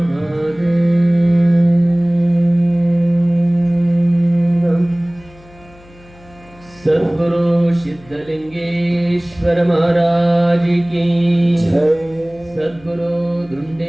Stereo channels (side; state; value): left; noise; hum, 25 dB below the sound